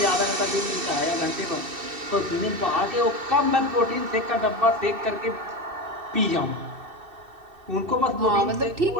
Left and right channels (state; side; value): late; left; 2.7 ms